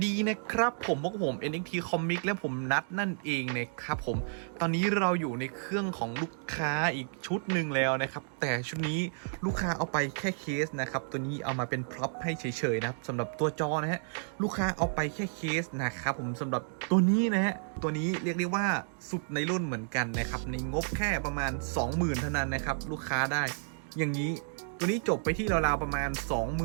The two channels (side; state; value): left; silent; digital silence